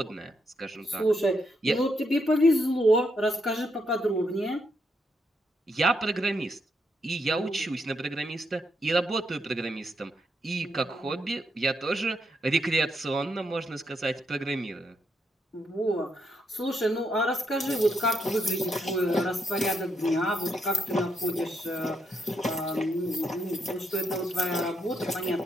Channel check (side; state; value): both; normal; correlation 0.78